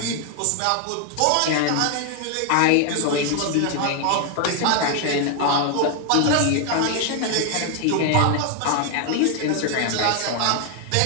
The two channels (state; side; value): different; both; correlation 0.00